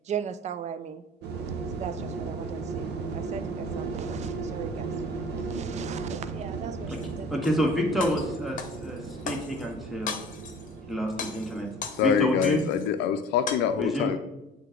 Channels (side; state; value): both; normal; correlation 0.43